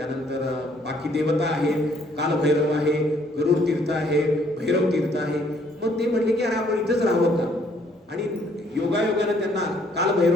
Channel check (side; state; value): both; normal; correlation 0.65